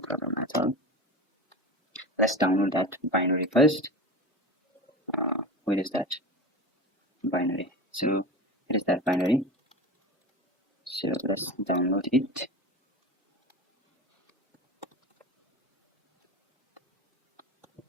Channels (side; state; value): both; normal; correlation 0.29